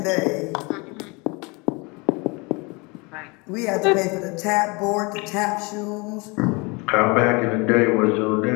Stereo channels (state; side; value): quieter; right; 28.0 dB